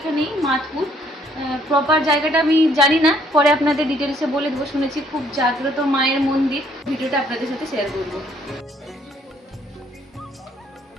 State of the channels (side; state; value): both; normal; correlation 0.65